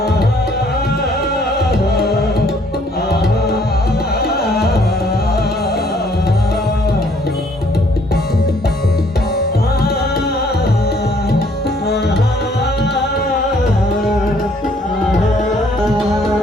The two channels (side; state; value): both; normal; correlation 0.63